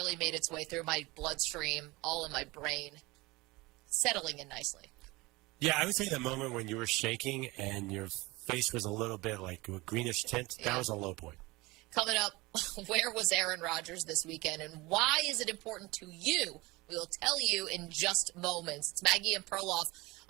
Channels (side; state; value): left; quieter; 22.3 dB